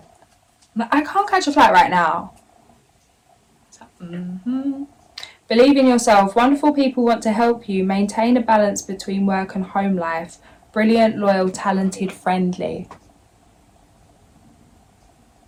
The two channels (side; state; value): both; identical; correlation 1.00